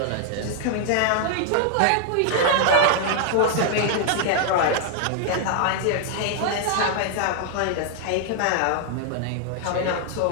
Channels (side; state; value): both; different; correlation 0.00